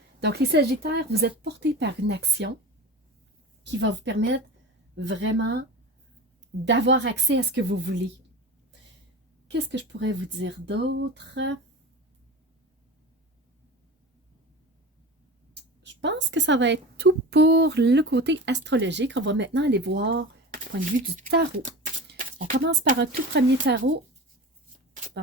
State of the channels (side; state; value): both; normal; correlation 0.31